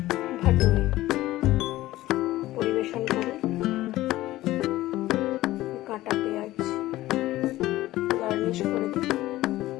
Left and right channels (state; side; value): quieter; right; 16.3 dB